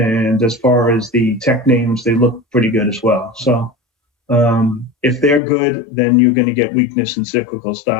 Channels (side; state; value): right; drops out; at 5.4 s